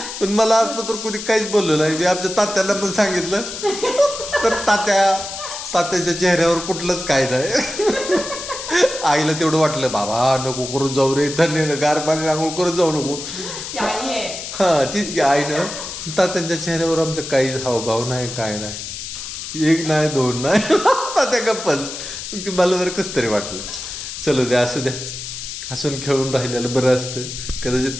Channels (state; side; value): noise; left; hiss, 8 dB below the sound